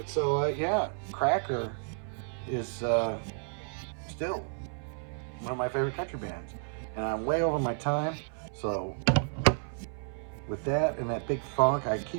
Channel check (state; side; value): silent; left; 57 dB below the other